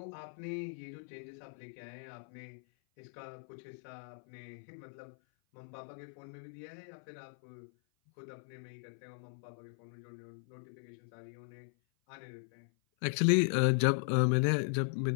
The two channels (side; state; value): right; silent; 53 dB below the other